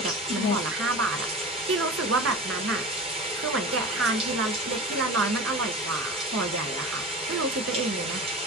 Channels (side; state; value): both; normal; correlation 0.33